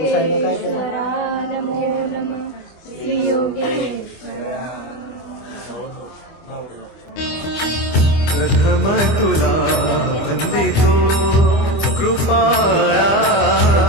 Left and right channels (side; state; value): right; late; 25 ms